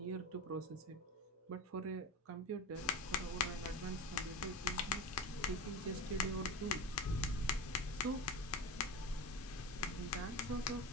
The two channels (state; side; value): normal; both; correlation 0.25